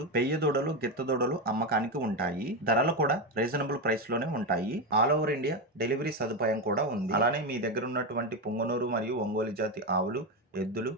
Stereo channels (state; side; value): normal; both; correlation 0.12